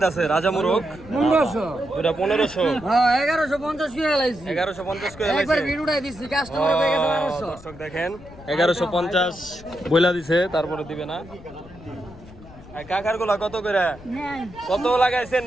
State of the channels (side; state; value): left; noise; rumble, 19 dB below the sound